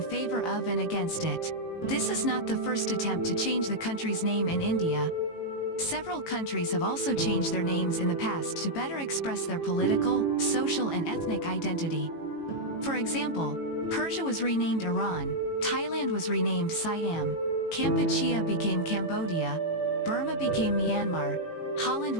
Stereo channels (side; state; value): right; late; 18 ms